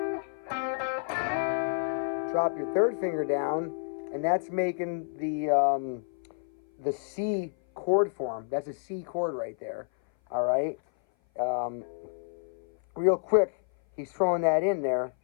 Drop your 3rd finger down, and that's making the C chord form. That's a C chord right there. All right. Real quick, he's throwing that in there,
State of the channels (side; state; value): right; silent; 57 dB below the other